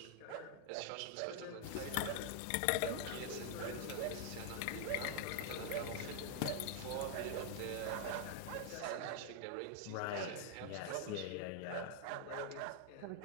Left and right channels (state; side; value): different; both; correlation 0.00